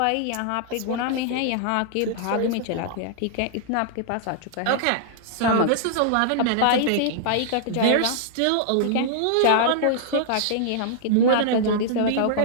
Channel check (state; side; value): different; both; correlation -0.01